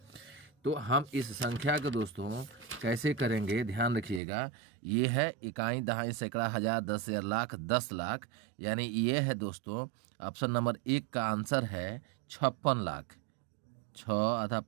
तो हम इस संख्या को दोस्तों कैसे करेंगे ध्यान रखिएगा। ये है इकाई, दहाई, सैकड़ा, हजार, 10 हजार, लाख, 10 लाख, यानी ये है दोस्तों ऑप्शन नंबर 1 का आंसर है 56 लाख। 6 आधा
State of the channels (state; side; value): drops out; left; at 4.2 s